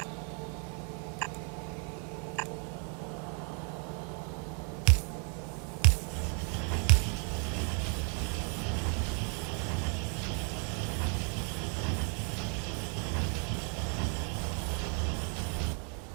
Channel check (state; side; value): quieter; left; 39.6 dB